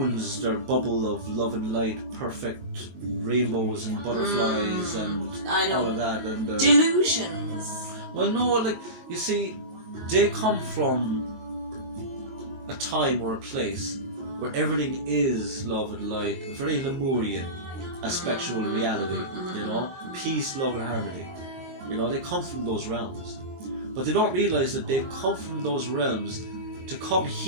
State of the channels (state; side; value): late; left; 23 ms